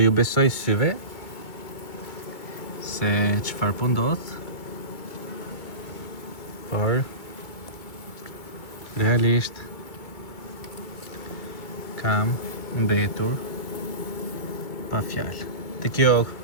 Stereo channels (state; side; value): late; right; 2.2 ms